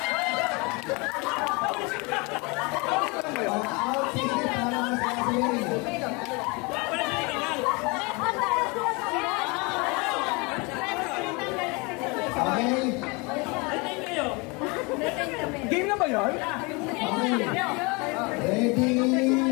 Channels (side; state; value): right; quieter; 28.4 dB